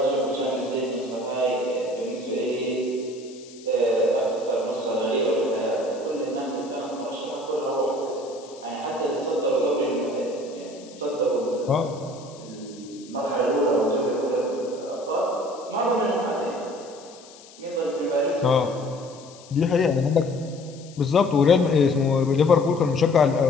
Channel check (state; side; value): noise; left; hiss, 22 dB below the sound